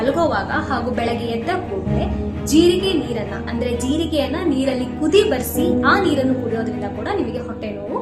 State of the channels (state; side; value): identical; both; correlation 1.00